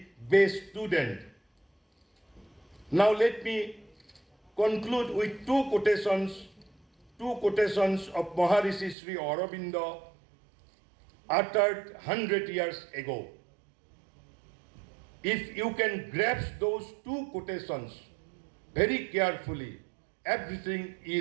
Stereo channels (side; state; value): left; drops out; at 9.0 s